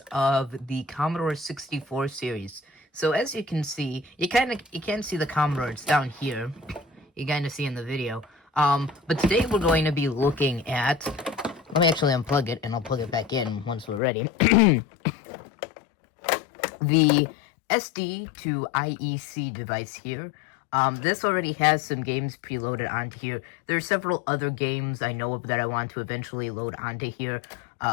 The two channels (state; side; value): drops out; right; at 14.0 s